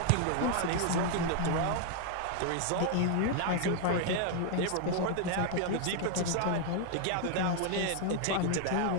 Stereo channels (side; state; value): both; different; correlation 0.00